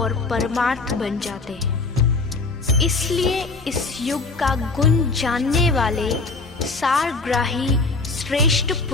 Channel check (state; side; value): quieter; right; 3.7 dB